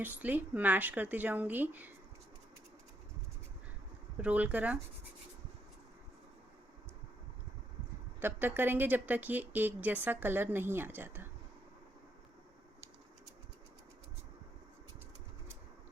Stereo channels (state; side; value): normal; both; correlation 0.76